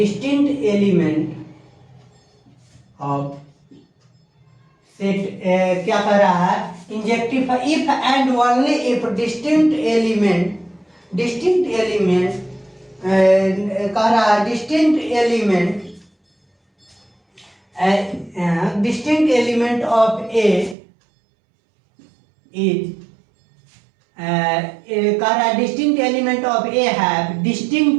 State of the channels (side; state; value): left; drops out; at 20.8 s